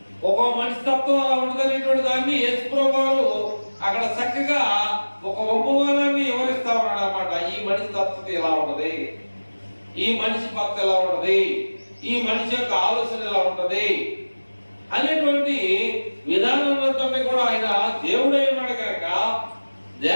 ఒక మనిషి తత్వం అలా ఉండదనేటువంటి దాన్ని యేసు ప్రభువు అక్కడ చక్కగా ఒక ఉపమానాన్ని వివరిస్తా ఉన్నాడు అన్నమాట. ఈ మనిషి తత్వత ఎలా ఉంటది, ఈ మనిషి భక్తి ఎలా ఉంటది, ఈ మనిషి యొక్క ఆలోచన ఎలా ఉంటది అనేటువంటి విధానంతో కూడా ఆయన దేవుడై ఉన్నాడు కనుక,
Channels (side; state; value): both; inverted; correlation -1.00